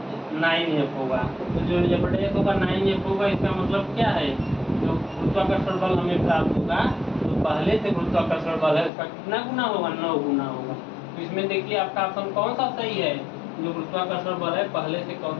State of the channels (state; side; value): drops out; right; at 8.9 s